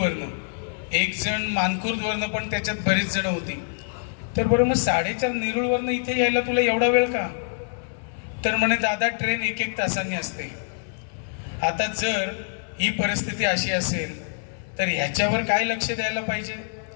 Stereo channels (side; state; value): right; silent; 59 dB below the other